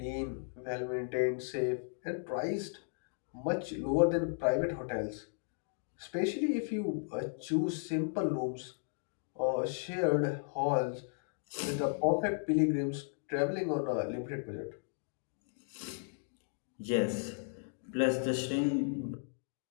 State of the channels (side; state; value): right; silent; digital silence